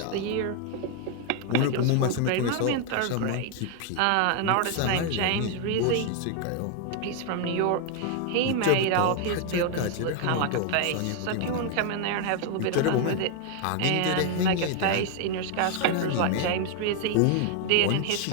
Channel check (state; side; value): different; both; correlation 0.01